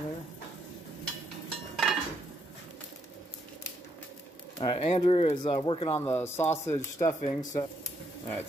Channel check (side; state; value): both; normal; correlation 0.75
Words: there. Alright, Andrew is working on the sausage stuffing. Alright,